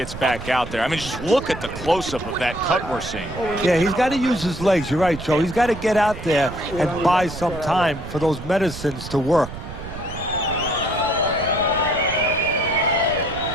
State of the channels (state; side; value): noise; right; rumble, 11 dB below the sound